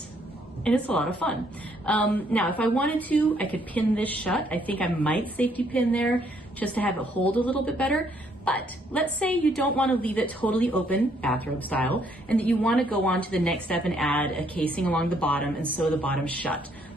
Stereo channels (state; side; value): normal; both; correlation 0.68